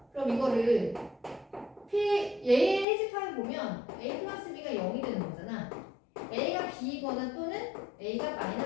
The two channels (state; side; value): drops out; right; at 2.9 s